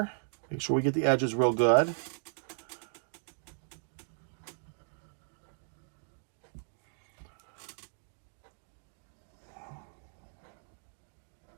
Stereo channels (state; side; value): silent; left; digital silence